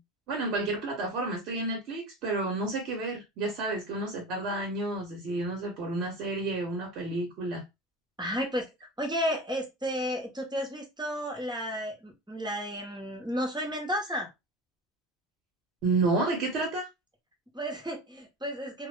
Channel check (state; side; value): normal; both; correlation 0.31